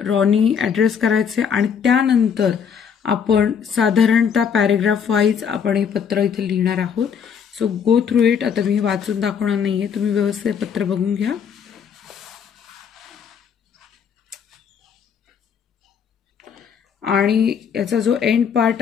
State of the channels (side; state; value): right; quieter; 7.3 dB